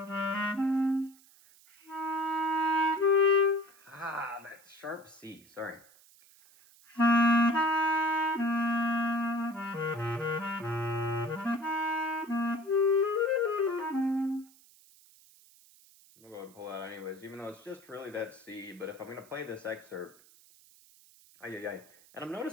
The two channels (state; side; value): noise; right; hiss, 26 dB below the sound